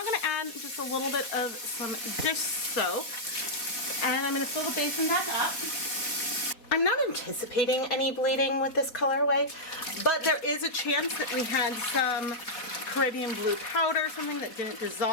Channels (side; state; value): right; late; 4.1 ms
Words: going to add just a little bit of some dish soap, and I'm going to fill the basin back up. I'm not anticipating any bleeding with this colorway, but there is a chance that we had some Caribbean blue powder, something that didn't